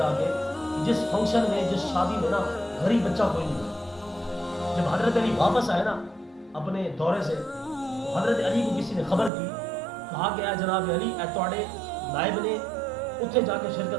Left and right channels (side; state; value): left; drops out; at 9.3 s